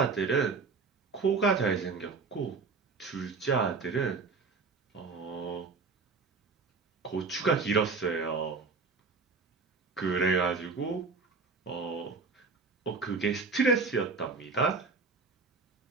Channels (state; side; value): quieter; left; 4.4 dB